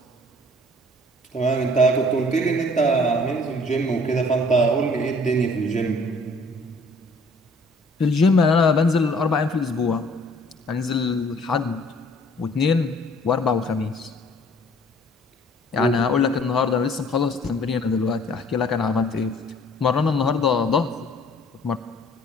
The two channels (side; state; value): both; normal; correlation 0.56